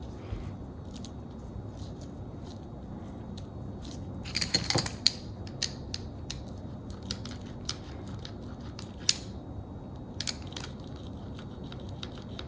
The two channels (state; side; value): identical; both; correlation 1.00